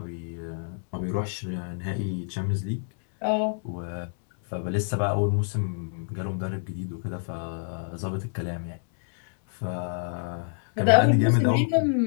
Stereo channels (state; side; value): silent; right; 60 dB below the other